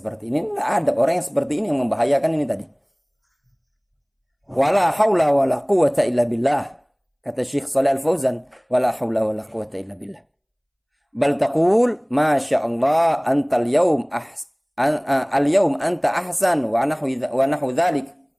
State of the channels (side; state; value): both; identical; correlation 1.00